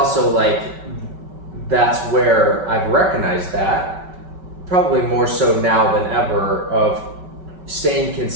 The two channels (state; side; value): late; left; 5.3 ms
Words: like, that's where I've recognized that, probably more so now than ever, of staying